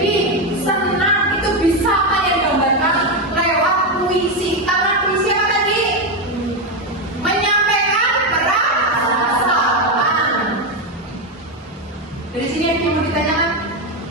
senang. Itu bisa kalian gambarkan lewat puisi. Karena puisi apa tadi? Menyampaikan perasaan. Dari sini yang mau ditanyakan?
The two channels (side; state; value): both; normal; correlation 0.09